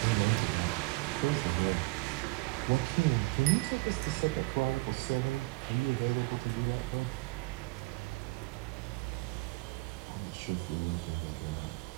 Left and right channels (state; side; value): quieter; left; 24.6 dB